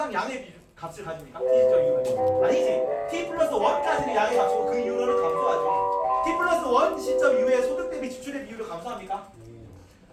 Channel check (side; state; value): both; identical; correlation 1.00